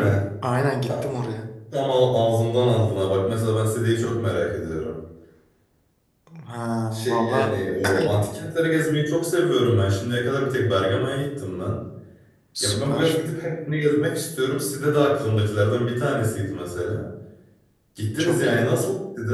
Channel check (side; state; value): both; identical; correlation 1.00